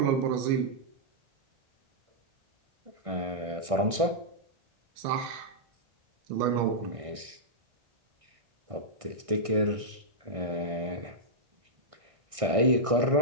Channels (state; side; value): late; left; 1.6 ms